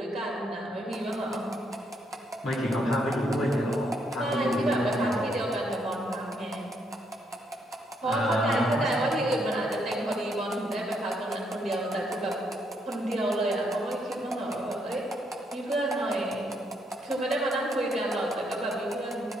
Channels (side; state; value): both; normal; correlation 0.74